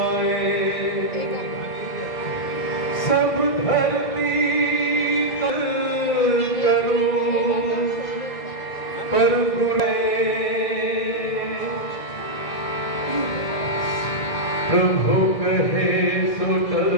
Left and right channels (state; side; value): late; right; 2.0 ms